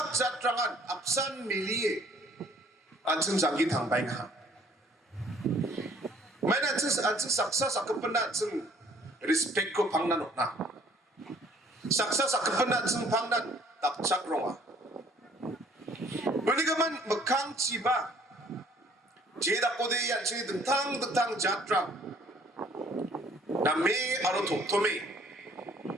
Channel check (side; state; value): both; normal; correlation 0.59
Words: 자트랑한 앞산 밀리에 안층 장기 당바잉하 mana anjing saksa sakepena anjing respect ko pangnan na saksa sakepena anjing pangnan tak chak ronga beligaman mekang ciba jeda kode anjing tentang jatra na me aro tome